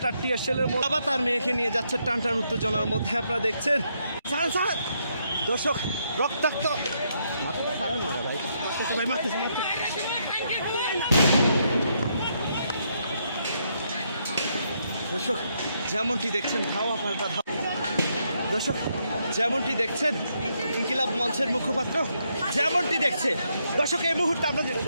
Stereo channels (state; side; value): inverted; both; correlation -0.76